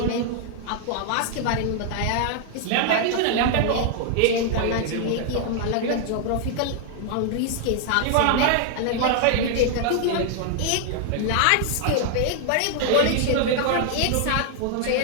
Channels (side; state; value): both; different; correlation -0.01